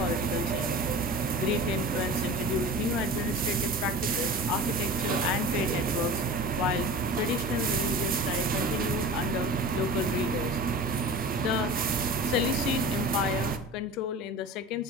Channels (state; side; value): normal; both; correlation 0.35